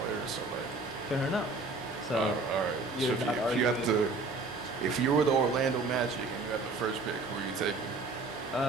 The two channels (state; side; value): quieter; left; 3.6 dB